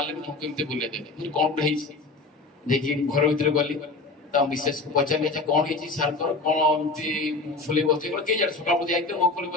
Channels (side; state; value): right; quieter; 3.5 dB